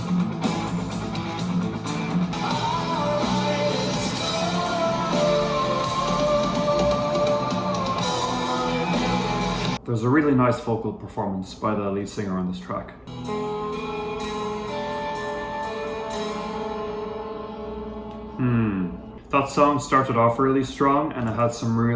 There's a really nice vocal performance by the lead singer on this track. That song started off really strong and it had some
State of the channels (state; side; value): identical; both; correlation 1.00